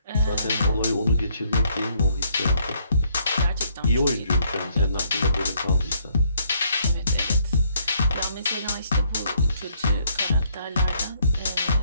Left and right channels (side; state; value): both; inverted; correlation -0.69